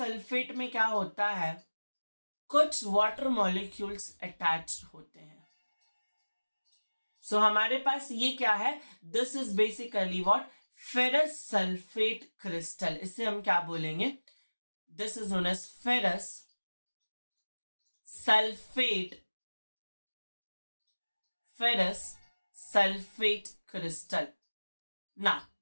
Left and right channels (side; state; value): both; inverted; correlation -1.00